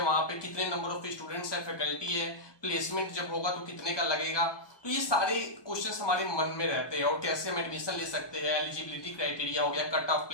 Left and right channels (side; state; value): right; late; 1.3 ms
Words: वहां पे कितने नंबर ऑफ स्टूडेंट्स है, फैकल्टी है, प्लेसमेंट जब होगा तो कितने का लगेगा। तो ये सारे क्वेश्चंस हमारे मन में रहते हैं, और कैसे हम एडमिशन ले सकते हैं, एलिजिबिलिटी क्राइटेरिया हो गया, कट ऑफ